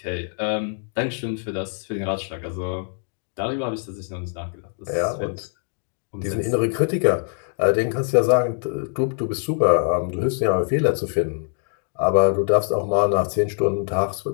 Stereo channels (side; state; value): right; silent; 57 dB below the other